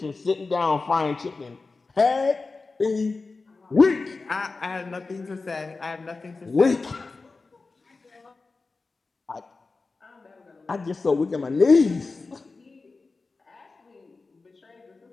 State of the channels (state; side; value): quieter; right; 3.9 dB